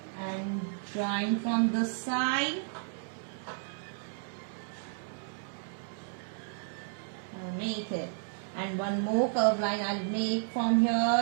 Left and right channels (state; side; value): silent; left; digital silence